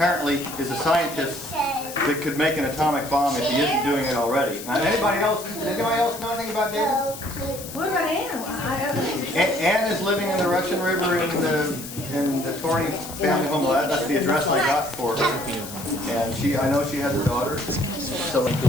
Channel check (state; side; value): noise; left; hiss, 12 dB below the sound